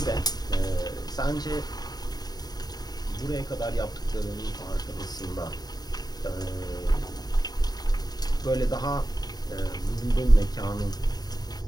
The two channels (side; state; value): right; late; 0.19 ms